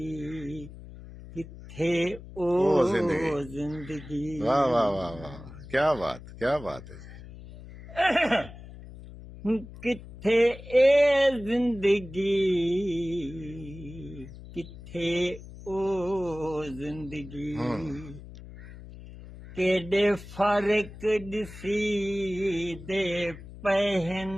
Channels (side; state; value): left; noise; hum, 15 dB below the sound